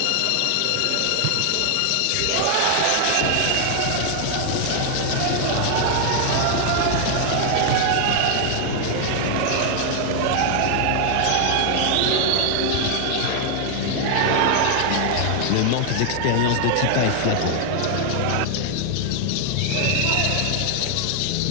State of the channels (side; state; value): both; different; correlation 0.00